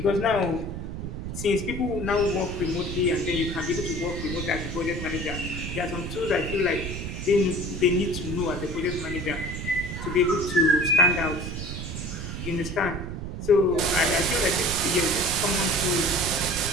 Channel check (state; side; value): noise; right; rumble, 6 dB below the sound